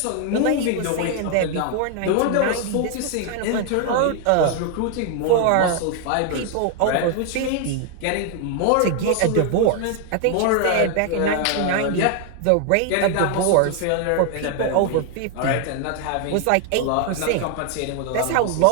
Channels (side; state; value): both; different; correlation 0.00